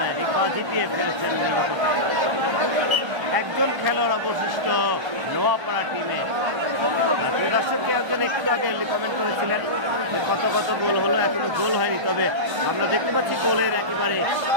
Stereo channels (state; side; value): late; left; 1.3 ms